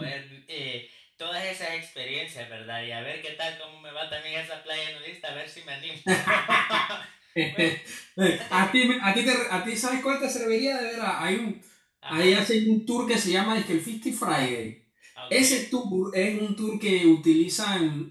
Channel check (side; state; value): both; identical; correlation 1.00